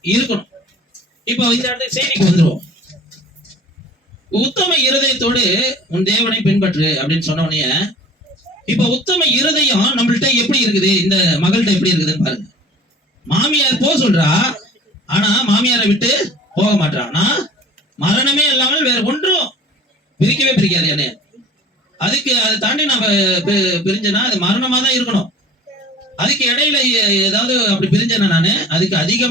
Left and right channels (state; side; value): normal; both; correlation 0.45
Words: இருக்கணும். இப்போ இந்த இடத்துக்கு செய்திக்கு வந்துருவோம். உத்தம இருதயத்தோடு உன் தேவனை பின்பற்று அப்படின்னு சொன்ன உடனே, இப்ப உத்தம இருதயம் நம்மள்ட்ட எப்படி இருக்குது, இந்த மகள்கிட்ட எப்படி இருக்குதுன்னு பாருங்க. மாமியார் போக சொல்றா, ஆனா மாமியாரை விட்டு போக மாட்டான். ஆனா மரணமே இல்லாமல் வேற ஒன்றும் பிரிக்கவே பிரிக்காது என்ன. அதுக்கு அதை தாண்டி நம்ம பிரிஞ்சனா அது மரணமா தான் இருக்கணும். அதுக்கு இடையில ஏதாவது அப்படி பிரிஞ்சனா நானு அதுக்கு